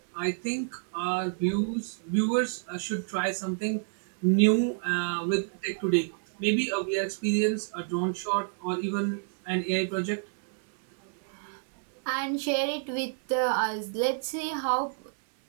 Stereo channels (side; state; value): left; silent; digital silence